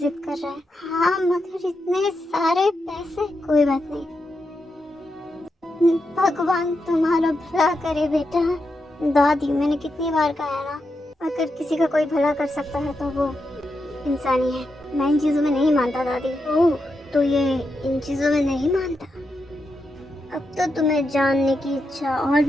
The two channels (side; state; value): both; normal; correlation 0.86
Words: कर रहा है। हाँ, मगर इतने सारे पैसे। कोई बात नहीं, भगवान तुम्हारा भला करे बेटा। दादी, मैंने कितनी बार कहा है ना, अगर किसी का कोई भला कर सकता है तो वो इंसानी है। मैं इन चीजों में नहीं मानता दादी। ओह, तो ये इन चीजों में नहीं मानता? अब तो तुम्हें जानने की इच्छा और